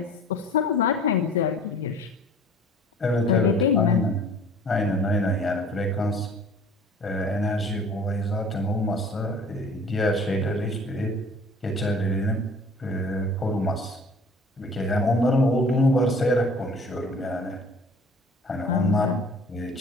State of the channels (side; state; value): both; normal; correlation 0.48